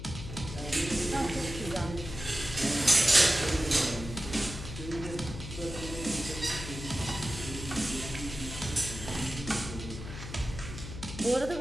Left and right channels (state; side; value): noise; left; hum, 9 dB below the sound